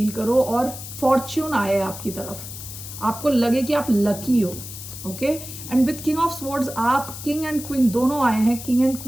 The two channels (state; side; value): noise; left; hiss, 11 dB below the sound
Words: करो और फॉर्च्यून आए आपकी तरफ, आपको लगे कि आप लकी हो, okay. And with king of swords आप किंग एंड क्वीन दोनों आए हैं। King and